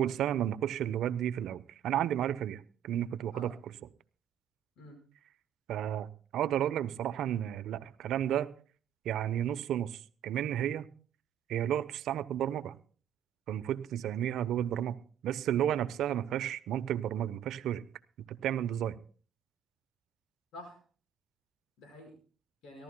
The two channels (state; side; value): quieter; left; 10.4 dB